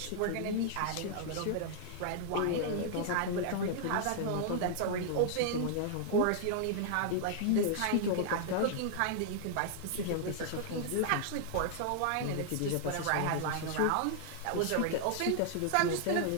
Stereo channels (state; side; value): different; both; correlation -0.01